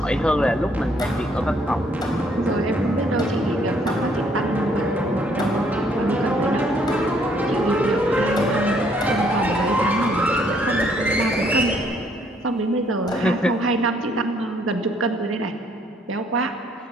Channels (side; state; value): both; normal; correlation 0.66